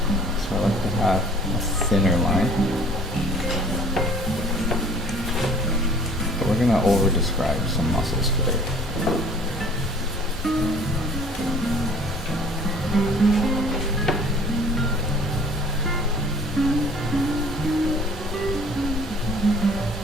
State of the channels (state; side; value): normal; both; correlation 0.52